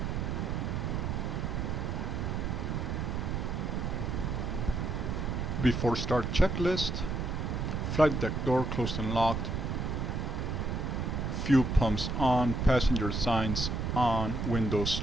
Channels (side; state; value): right; noise; rumble, 1 dB below the sound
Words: Before start checklist, flight deck door closed and locked, fuel pumps on, passenger signs on,